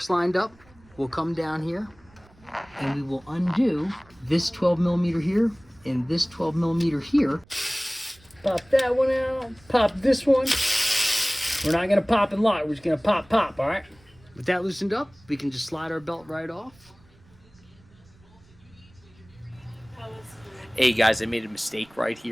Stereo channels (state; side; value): noise; right; rumble, 28 dB below the sound